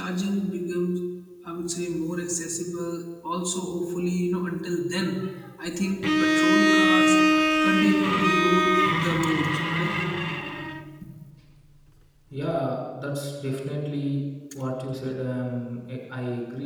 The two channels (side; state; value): both; identical; correlation 1.00